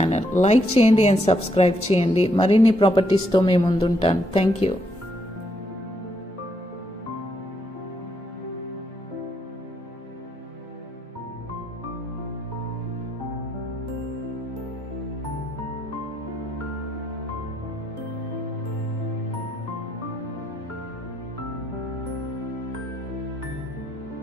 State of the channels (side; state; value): both; normal; correlation 0.75